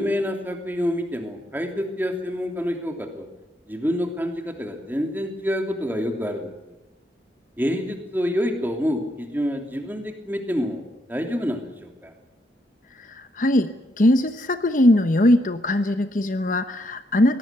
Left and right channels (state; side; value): normal; both; correlation 0.77